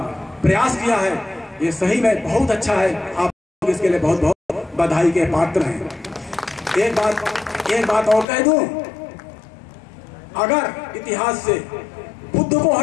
प्रयास किया है। ये सही में बहुत अच्छा है, आप इसके लिए बहुत बहुत बधाई के पात्र हैं। एक बात और कह दूं, अगर इतिहास से बुद्ध को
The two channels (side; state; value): right; drops out; at 8.2 s